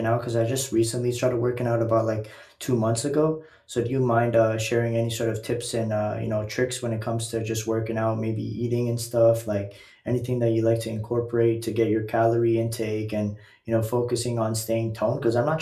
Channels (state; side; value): identical; both; correlation 1.00